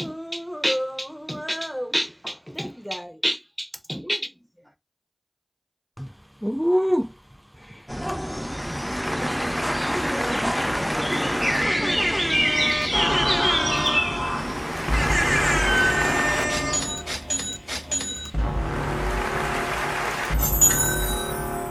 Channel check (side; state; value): both; identical; correlation 1.00